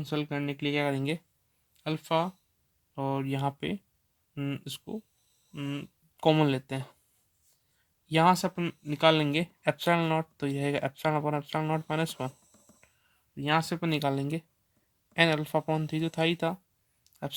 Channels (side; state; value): both; identical; correlation 1.00